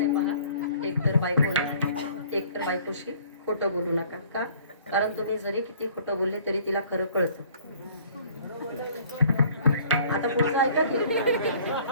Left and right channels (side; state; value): both; inverted; correlation -0.54